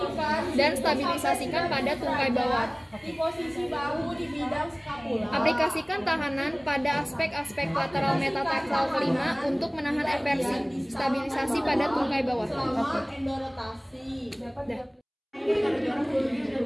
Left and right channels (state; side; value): identical; both; correlation 1.00